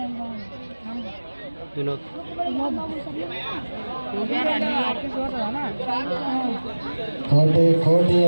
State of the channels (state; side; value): inverted; both; correlation -1.00